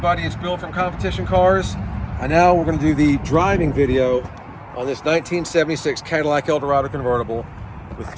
It's Bill from Competition Cars. And now we're going to do the driving video on this 1976 Cadillac Eldorado convertible with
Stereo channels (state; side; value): identical; both; correlation 1.00